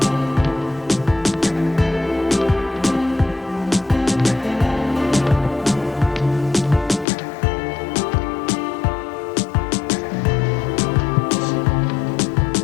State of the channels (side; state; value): right; drops out; at 7.1 s